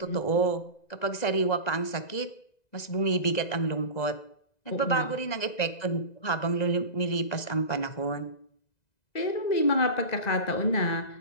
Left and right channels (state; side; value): late; right; 2.0 ms